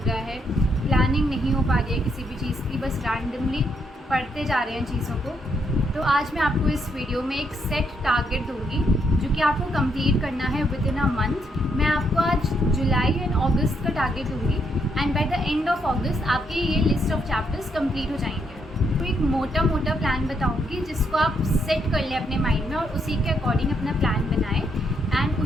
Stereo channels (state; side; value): normal; both; correlation 0.76